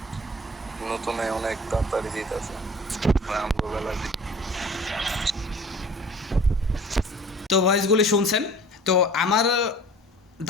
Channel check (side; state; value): both; normal; correlation 0.45